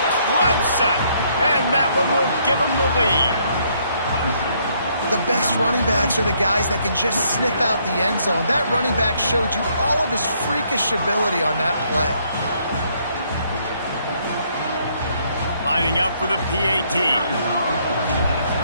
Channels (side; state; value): both; inverted; correlation -0.69